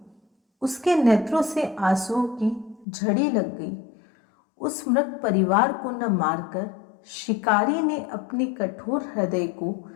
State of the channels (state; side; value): drops out; right; at 2.9 s